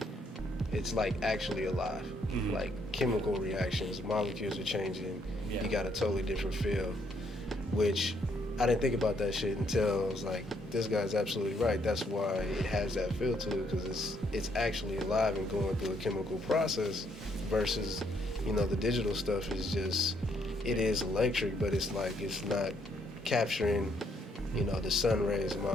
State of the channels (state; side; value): normal; both; correlation 0.71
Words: alive. Mm-hmm. Like, chemical reactions, molecules are changing. Yeah. You got a totally different feel, which I didn't think about that shit until I was like, this guy's absolutely right. That's why it has that feel to it, because it's actually alive and going through a chemical process, versus, you know, the digital stuff is just, it is electric, but it's like, it's not capturing, you know, the sun rays and